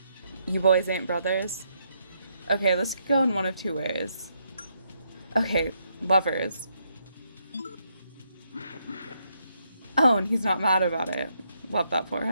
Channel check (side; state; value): both; inverted; correlation -0.76